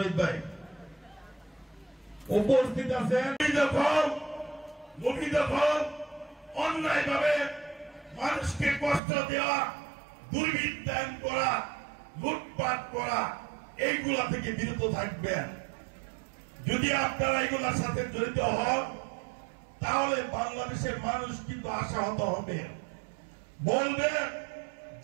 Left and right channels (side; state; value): left; drops out; at 9.0 s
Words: ভাই উপস্থিত আছেন। অন্যায় ভাবে মানুষকে কষ্ট দেওয়া, দুর্বৃত্তায়ন করা, লুটপাট করা, এইগুলা থেকে বিরত থাকবেন। যদি আপনারা এগুলার সাথে জড়িত হন তাহলে বাংলাদেশের মানুষ কিন্তু আশাহত হবে, বলবে